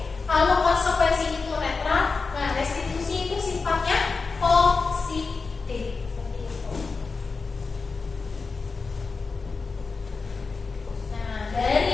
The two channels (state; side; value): quieter; right; 4.4 dB